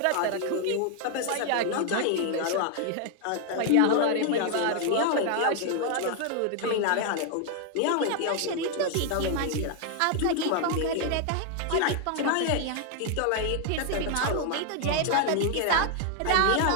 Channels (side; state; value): both; different; correlation 0.00